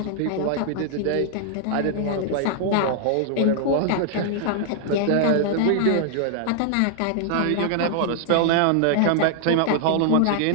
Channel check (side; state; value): both; different; correlation -0.01